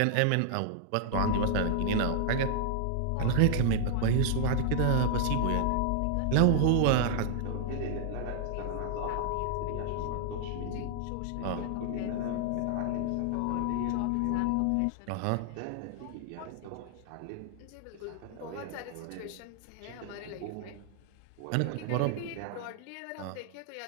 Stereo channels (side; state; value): both; different; correlation -0.01